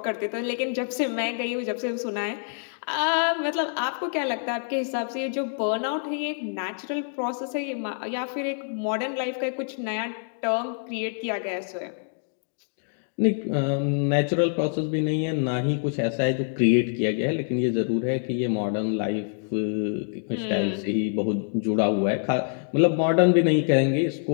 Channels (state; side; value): silent; right; digital silence